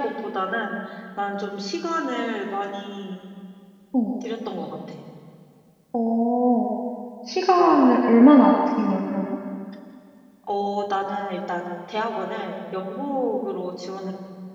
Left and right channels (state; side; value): identical; both; correlation 1.00